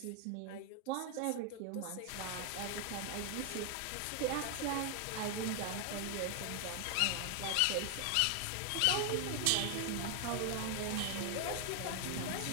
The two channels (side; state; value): both; different; correlation 0.00